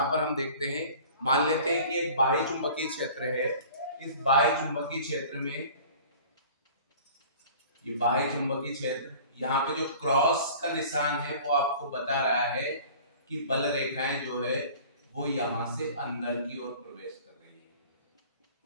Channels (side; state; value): both; inverted; correlation -0.45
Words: पर हम देखते हैं, मान लेते हैं कि एक बाह्य चुंबकीय क्षेत्र है। इस बाह्य चुंबकीय क्षेत्र में ये बाह्य चुंबकीय क्षेत्र, यहाँ पे जो क्रॉस का निशान है वो आपको बता रहा है कि बल रेखाएं जो है वो यहाँ से अंदर की ओर प्रवेश कर रही है।